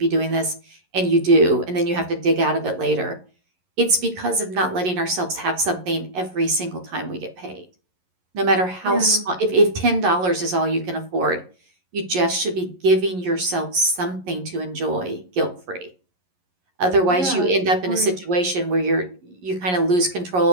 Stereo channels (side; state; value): left; late; 11 ms